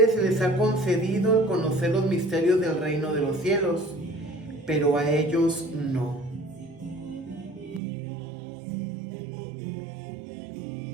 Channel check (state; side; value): drops out; left; at 7.8 s